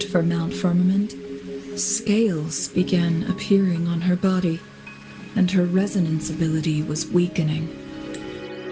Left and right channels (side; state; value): both; identical; correlation 1.00